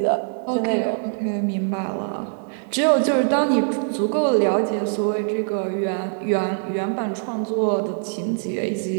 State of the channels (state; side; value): silent; left; digital silence